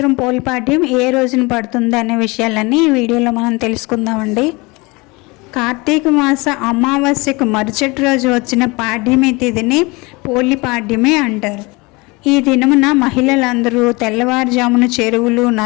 పోలిపాడ్యం ఏ రోజున పడుతుంది అనే విషయాలన్నీ ఈ వీడియోలో మనం తెలుసుకుందామండి. కార్తీక మాస అమావాస్యకు మరుసటి రోజు వచ్చిన పాడ్యమి తిథిని పోలిపాడ్యమే అంటారు. ఈ దినమున మహిళలందరూ తెల్లవారుజామున చెరువులు,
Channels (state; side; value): quieter; right; 25.2 dB